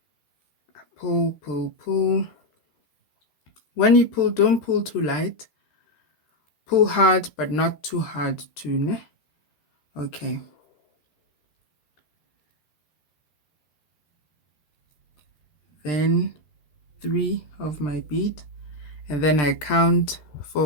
Pull, pull, pull. When you pull, don't pull too light. Pull hard, but not too hard too, ne? Okay. Then 3 of my bead, and then I count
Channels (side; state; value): right; late; 13 ms